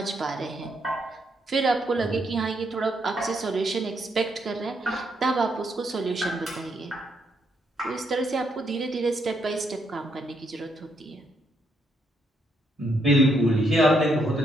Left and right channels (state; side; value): normal; both; correlation 0.76